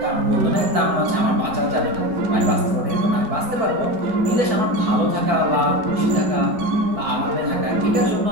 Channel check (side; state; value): left; late; 4.6 ms